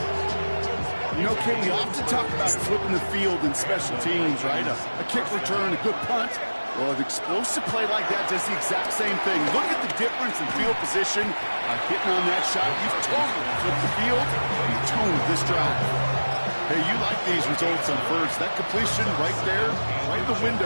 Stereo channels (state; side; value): inverted; both; correlation -1.00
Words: You know, Kate, we often talk about flipping the field in special teams, right? A kick return, a good punt. Well, an explosive play like that does the exact same thing. Look at the difference in field position. Hitting on that shot, you've totally flipped the field. You toned this drive. Hey, you like these results on first. That completion right there, right in the window